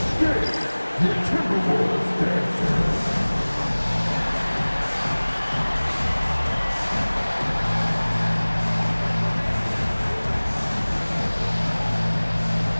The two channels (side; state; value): both; inverted; correlation -1.00